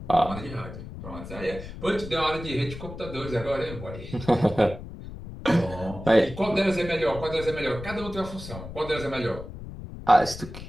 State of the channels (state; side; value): noise; left; rumble, 11 dB below the sound